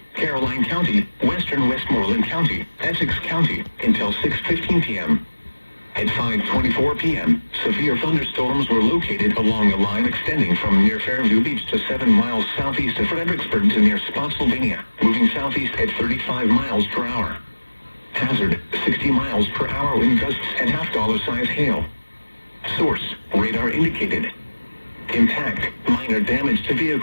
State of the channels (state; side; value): inverted; both; correlation -1.00